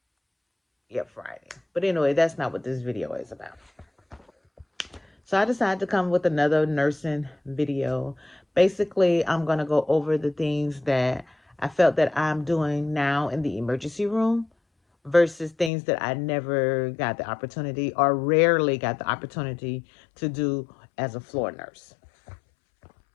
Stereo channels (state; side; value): drops out; right; at 15.7 s